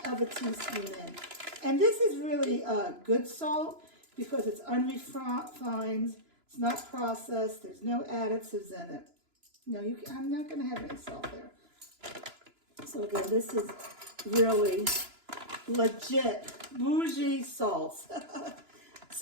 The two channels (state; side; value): late; left; 2.9 ms